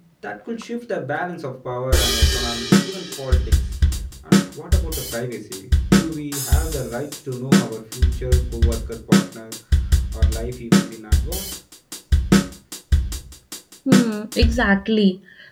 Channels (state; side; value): identical; both; correlation 1.00